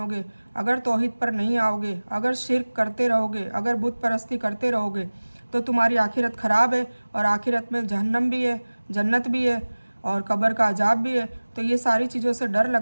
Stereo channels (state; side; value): inverted; both; correlation -1.00